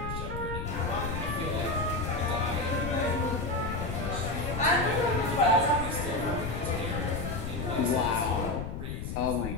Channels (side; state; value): left; noise; rumble, 5 dB below the sound